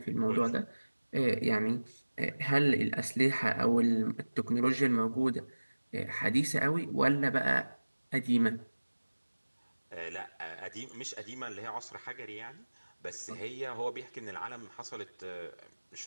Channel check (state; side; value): inverted; both; correlation -1.00